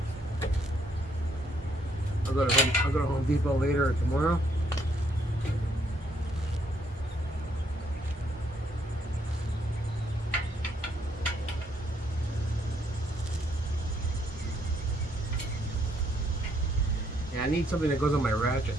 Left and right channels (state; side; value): normal; both; correlation 0.71